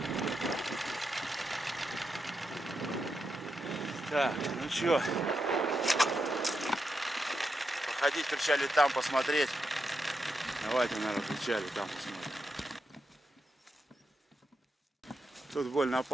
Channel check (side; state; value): both; normal; correlation 0.85